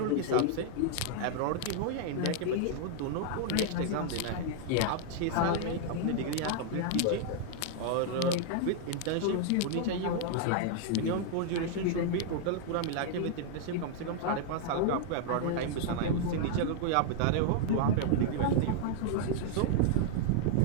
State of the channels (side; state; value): both; different; correlation 0.00